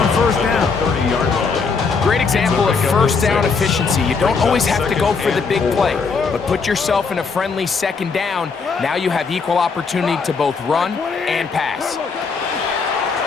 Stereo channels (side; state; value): right; quieter; 5.0 dB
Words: 1st down. 30-yard line. Great example of first down efficiency. You don't always have to go for the big play, but put yourself in a friendly 2nd down. Now you have equal opportunity to both run and pass.